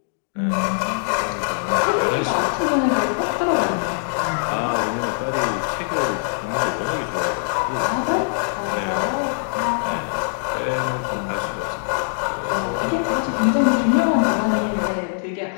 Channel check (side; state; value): right; silent; digital silence